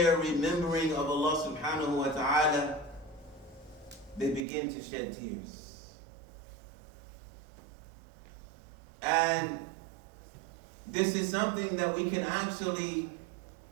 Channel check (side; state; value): left; drops out; at 4.5 s